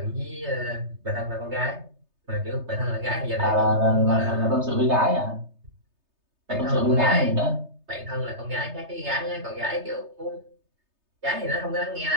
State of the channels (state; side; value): late; left; 3.3 ms